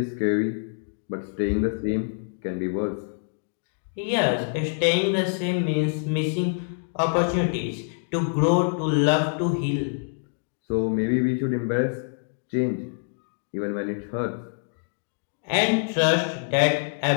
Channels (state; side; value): silent; right; digital silence